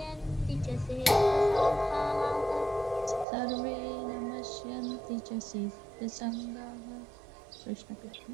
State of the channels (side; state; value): left; drops out; at 3.2 s